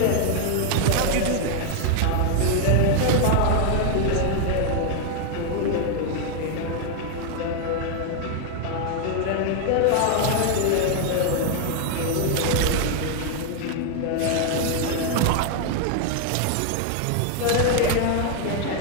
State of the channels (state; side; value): different; both; correlation 0.00